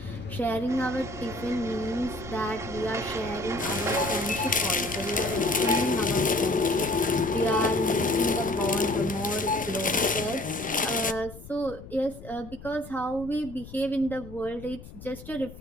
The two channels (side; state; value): left; noise; rumble, 16 dB below the sound